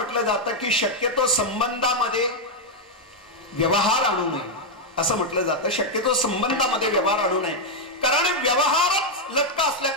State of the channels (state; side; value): normal; both; correlation 0.00